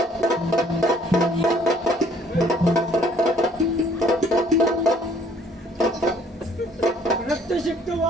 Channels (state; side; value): normal; both; correlation 0.59